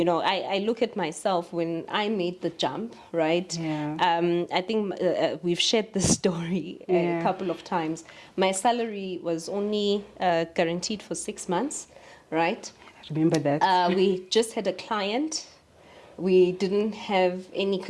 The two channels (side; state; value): both; identical; correlation 1.00